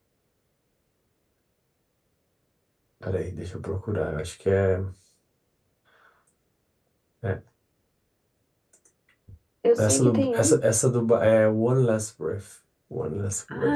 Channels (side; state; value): both; identical; correlation 1.00